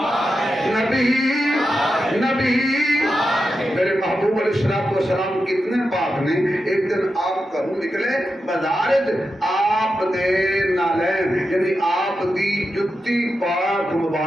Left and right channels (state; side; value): normal; both; correlation 0.89